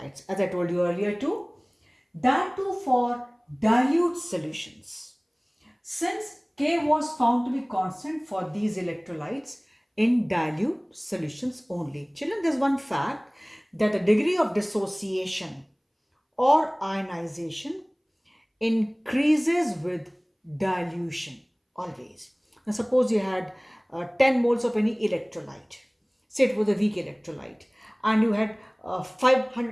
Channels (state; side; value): identical; both; correlation 1.00